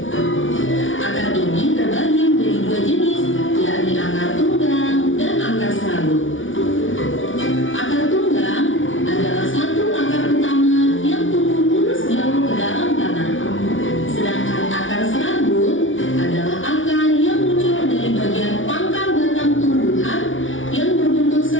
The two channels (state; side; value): late; right; 0.57 ms